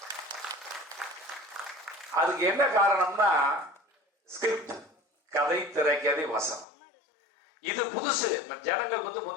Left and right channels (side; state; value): right; drops out; at 6.7 s